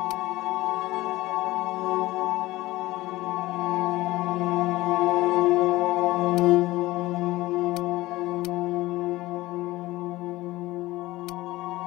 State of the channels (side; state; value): right; quieter; 18.3 dB